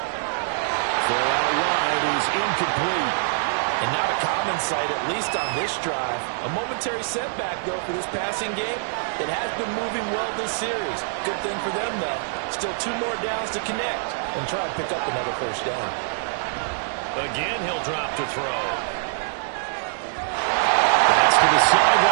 Throw out wide is incomplete. And not a common sight, at least on this drive. A momentary setback, though, for this passing game. It has been moving well this series. Good thing for them, though. Still 2 more downs to connect and try and pick up another 1st down. Again, he'll drop to throw. That's to the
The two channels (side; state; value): left; silent; 62 dB below the other